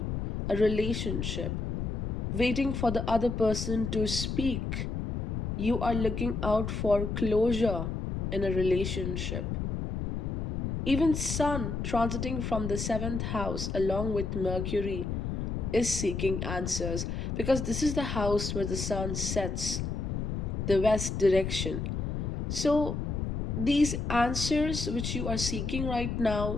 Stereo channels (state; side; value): noise; left; rumble, 2 dB below the sound